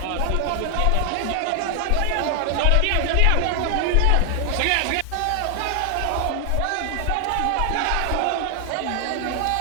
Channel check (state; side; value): different; both; correlation 0.00